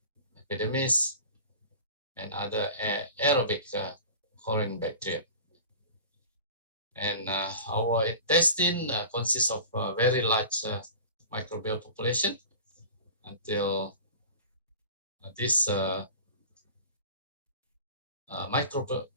epidermis, and other aerobic colon bacteria. And our intestine consists of a very large microbial population until this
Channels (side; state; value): both; inverted; correlation -0.38